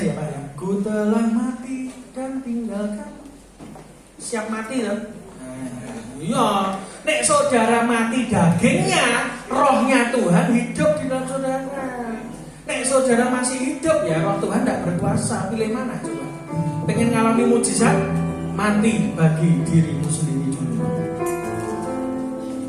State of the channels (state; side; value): identical; both; correlation 1.00